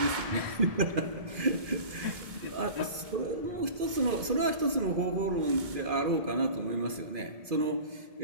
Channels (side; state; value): left; late; 2.4 ms